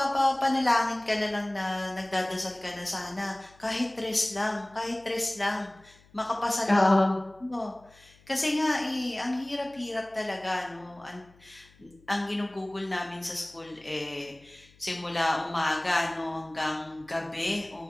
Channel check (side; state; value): left; noise; hum, 28 dB below the sound